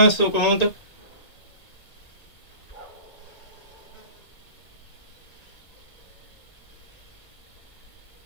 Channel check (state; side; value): late; right; 1.9 ms